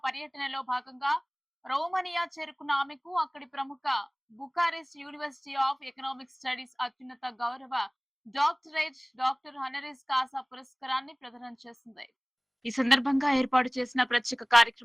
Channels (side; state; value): both; identical; correlation 1.00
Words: పర్యటనలో భాగంగా రోమనియా చేరుకున్న ఆమెకు అక్కడి ప్రముఖ Bucharest university of economic studies అత్యున్నత గౌరవ డాక్టర్ హనరీస్ కాసా పురస్కారాన్ని ప్రదానం చేసింది. ఈ సందర్భంగా ఏర్పాటు చేసిన ప్రత్యేక